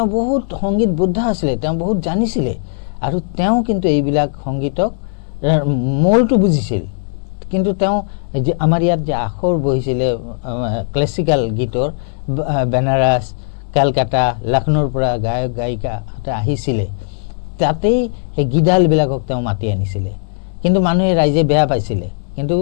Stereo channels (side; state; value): right; silent; digital silence